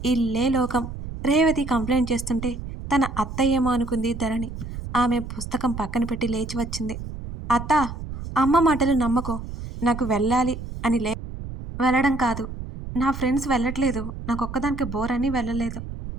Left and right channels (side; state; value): right; noise; rumble, 9 dB below the sound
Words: ఇల్లే లోకం. రేవతి కంప్లైంట్ చేస్తుంటే తన అత్త ఏమో అనుకుంది ధరణి. ఆమె పుస్తకం పక్కన పెట్టి లేచి వచ్చింది. అత్త, అమ్మ మాటలు నమ్మకో. నాకు వెళ్ళాలి అని వెళ్ళడం కాదు. నా ఫ్రెండ్స్ వెళ్ళట్లేదు. నాకొక్కదానికి బోర్ అని వెళ్ళలేదు.